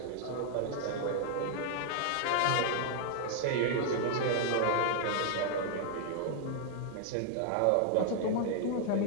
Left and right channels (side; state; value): both; different; correlation -0.01